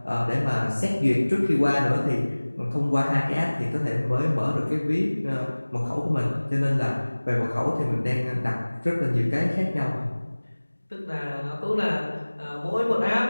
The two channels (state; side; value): inverted; both; correlation -1.00